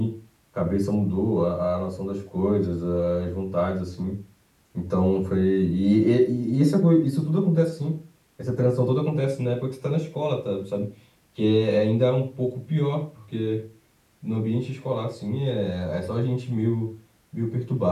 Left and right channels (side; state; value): both; identical; correlation 1.00